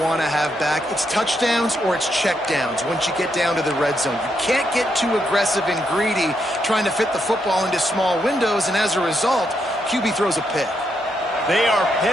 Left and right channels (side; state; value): both; normal; correlation 0.79